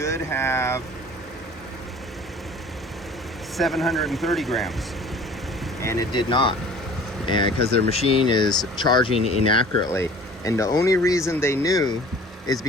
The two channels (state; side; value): normal; both; correlation 0.47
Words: have 730 grams, and it did not, and because their machine is charging inaccurately. And the only reason they knew is